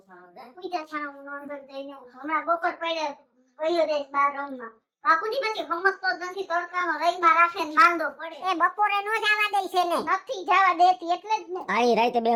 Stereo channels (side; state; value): both; identical; correlation 1.00